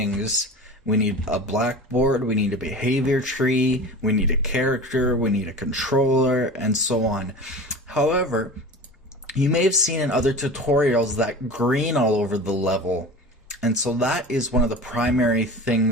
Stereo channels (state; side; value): normal; both; correlation 0.35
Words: We need a Blackboard, we need a behavior tree, we need a character, we need a controller, and so on. However, you may have seen in other tutorials that green all over the level. And so that is one of the primary